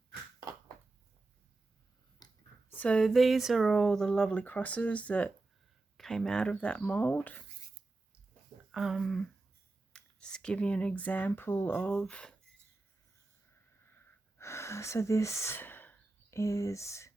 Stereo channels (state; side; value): quieter; left; 3.2 dB